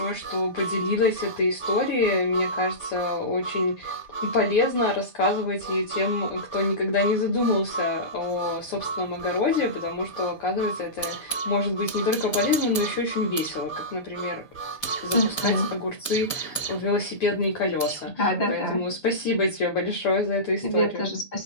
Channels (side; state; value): right; late; 6.9 ms